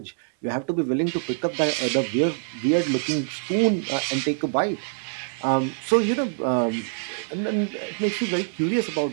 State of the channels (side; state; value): left; silent; 62 dB below the other